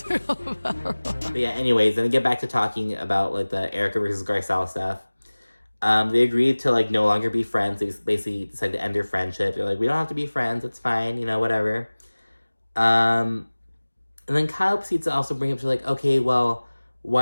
be called a pedophile. But yeah, anyways, then get back to talking about like the Erika versus Garcelle stuff. They agreed to like no longer be friends. They basically decided to end their friendship. They're like, we don't have to be friends. It's fine, you know, whatever. And then Kyle proceeds to also bring up, she's like, okay, well,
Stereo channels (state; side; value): inverted; both; correlation -1.00